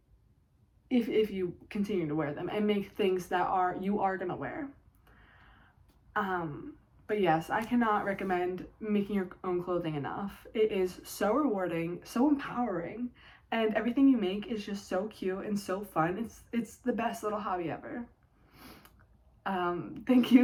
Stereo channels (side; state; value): both; identical; correlation 1.00